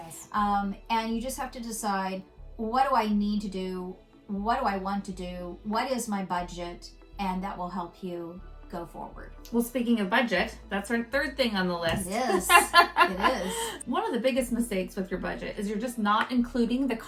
And you just have to decide, what do I need to do? What do I want to do? What is my budget? And that will help you go forward. Well, speaking of budget, that's our third thing on the list. It is. It is. One of the biggest mistakes with your budget is you're just not including the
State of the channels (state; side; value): identical; both; correlation 1.00